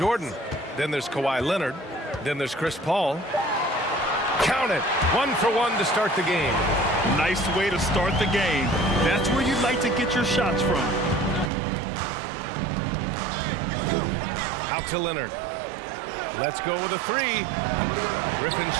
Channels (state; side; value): drops out; left; at 11.5 s